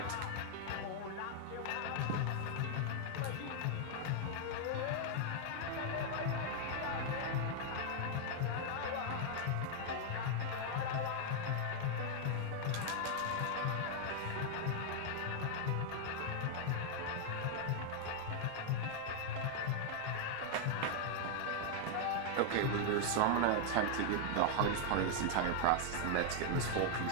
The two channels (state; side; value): different; both; correlation 0.00